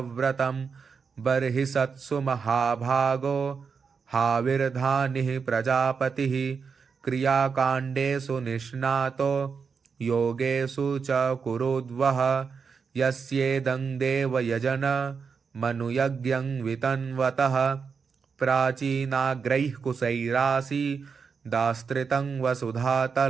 बर्हिषत्सु महाभागो हाविर्धानिः प्रजापतिः। क्रियाकाण्डेषु निष्णातो योगेषु च कुरुद्वः। यस्येदं देवयजन मनुयज्ञं वितन्वतः। प्राचीनाग्रैः कुशैरासि दास्त्रितं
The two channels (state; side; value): quieter; left; 5.7 dB